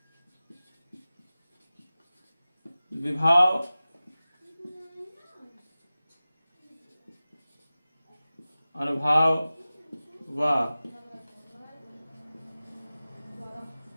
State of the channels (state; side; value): inverted; both; correlation -0.96